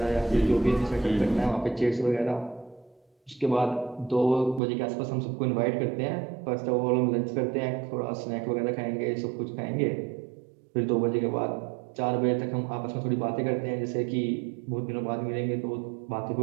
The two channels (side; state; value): left; drops out; at 4.6 s